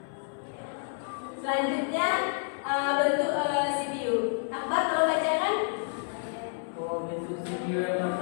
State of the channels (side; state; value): right; silent; 58 dB below the other